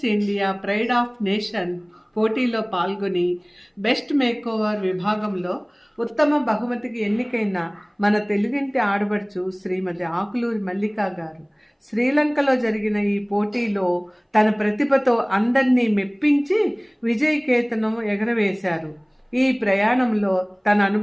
India pride of nation పోటీలో పాల్గొని బెస్ట్ మేకోవర్ విభాగంలో ఉత్తమ బహుమతికి ఎన్నికైన మన తెలుగింటి ఆడబడుచు శ్రీమతి ఆకులూరి మల్లికా గారు శ్రీలంకలో జరిగిన ఈ పోటీలో తన ప్రతిభతో అందరినీ మెప్పించి విజయకేతనం ఎగరవేశారు. ఈ ప్రయాణంలో తన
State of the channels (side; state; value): both; identical; correlation 1.00